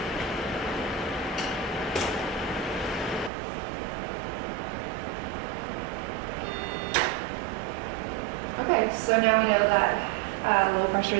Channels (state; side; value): drops out; left; at 3.3 s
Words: Okay, so now we know that low